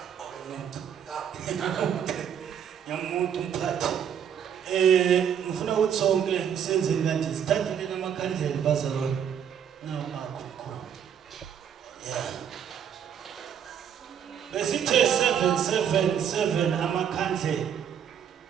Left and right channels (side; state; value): left; quieter; 8.6 dB